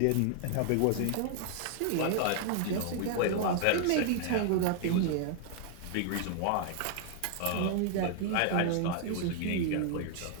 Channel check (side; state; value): both; different; correlation 0.00